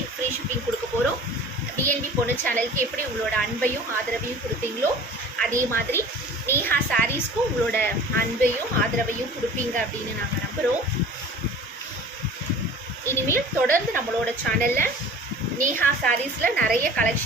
ஃப்ரீ ஷிப்பிங் கொடுக்க போகிறோம். பிஎன்பி பொண்ணு சேனலுக்கு எப்படி உங்களோட அன்பையும் ஆதரவையும் கொடுப்பீங்களோ அதே மாதிரி நேஹா சாரீஸ்க்கும் உங்களோட அன்பையும் ஆதரவையும் கொடுப்பீங்க அப்படின்னு நாங்கள் நம்புகிறோம். இனிமேல் தொடர்ந்து நம்மளோட சேனலில் நேஹா சாரீஸில் நிறைய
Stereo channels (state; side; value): normal; both; correlation 0.43